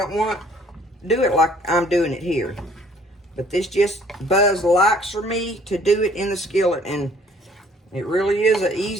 want to do it like I'm doing it here. But this just Buzz likes for me to do it in the skillet, and it really is the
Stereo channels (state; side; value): normal; both; correlation 0.58